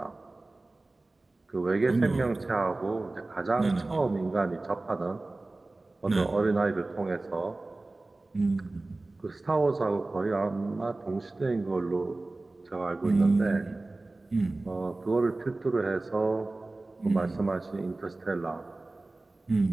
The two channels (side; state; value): left; quieter; 3.1 dB